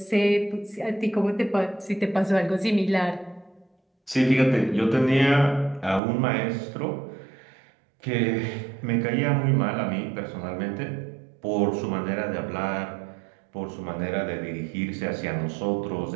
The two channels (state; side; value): drops out; left; at 6.0 s